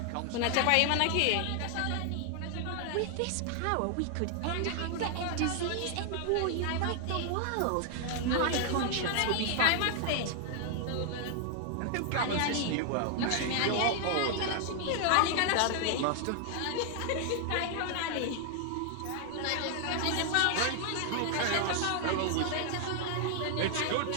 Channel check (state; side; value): different; both; correlation 0.00